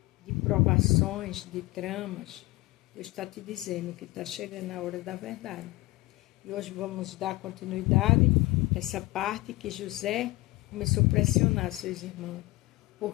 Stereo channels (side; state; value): right; quieter; 20.5 dB